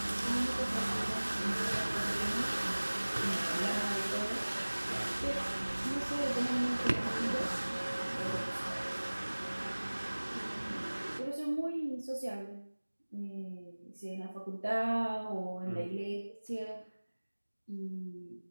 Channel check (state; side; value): inverted; both; correlation -1.00